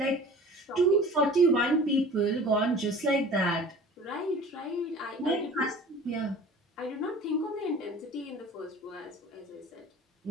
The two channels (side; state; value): both; normal; correlation 0.43